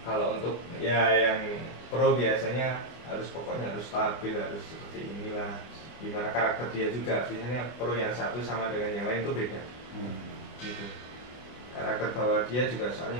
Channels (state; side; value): late; right; 24 ms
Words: Kalau untuk ya yang pro biasanya pokoknya harus stabil, harus seperti inilah. Gimana karakter dia juga, biasanya pro yang satu sama dengan yang lain itu beda. Gitu. Karakter bawah dia juga soalnya